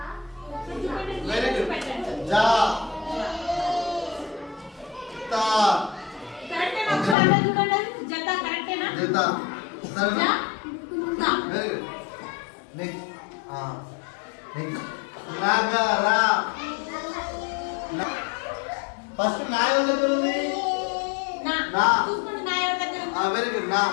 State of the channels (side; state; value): right; drops out; at 7.2 s